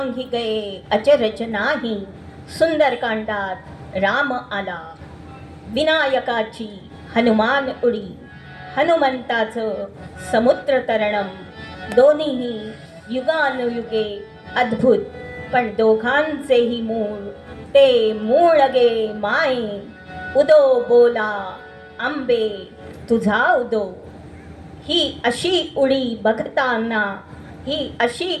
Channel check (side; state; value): both; identical; correlation 1.00